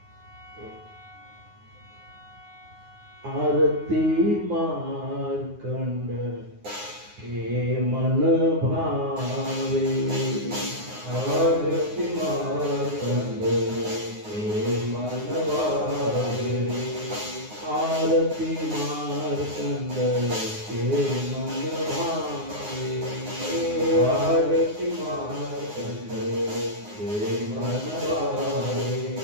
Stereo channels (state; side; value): late; left; 9.6 ms